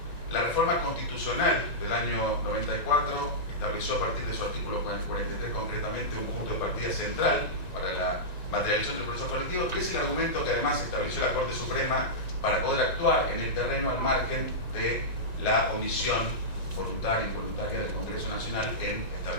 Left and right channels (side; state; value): right; late; 1.9 ms